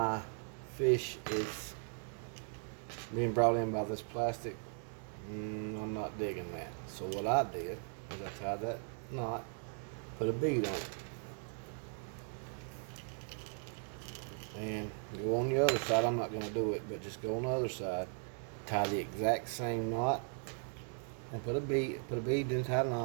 fish is being brought in by this plastic, I'm not digging that. So what I did is I tied that knot, put a bead on it, and go on the other side. I'm not going to do it, but just go on the other side, tie the exact same knot, and put a bead, then tie a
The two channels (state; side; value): silent; left; 52 dB below the other